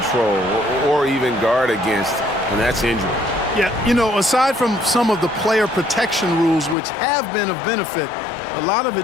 or even guard against, and that's injury. Yeah, you know, aside from some of the player protection rules, which have been of benefit, a lot of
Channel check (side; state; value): right; drops out; at 6.8 s